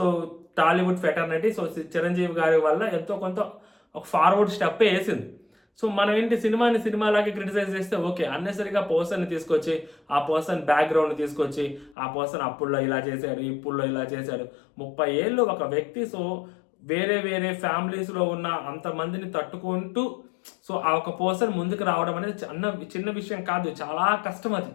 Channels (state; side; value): drops out; right; at 12.0 s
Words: Tollywood fraternity so Chiranjeevi గారి వల్ల ఎంతో కొంత ఒక ఫార్వర్డ్ స్టెప్ వేసింది. సో మనం ఏంటి, సినిమాని సినిమాలాగే క్రిటిసైజ్ చేస్తే ఓకే, అన్నెసరిగా పర్సన్ని తీసుకొచ్చి ఆ పర్సన్ బ్యాక్గ్రౌండ్ తీసుకొచ్చి ఆ పర్సన్ అప్పుల్లో ఇలా చేశాడు, ఇప్పుల్లో ఇలా చేశాడు, 30 ఏళ్ళు ఒక వ్యక్తి సో వేరే వేరే ఫ్యామిలీస్లో ఉన్న అంతమందిని తట్టుకుంటూ సో ఆ ఒక పర్సన్ ముందుకు రావడం అనేది చిన్న విషయం కాదు, చాలా కష్టం అది.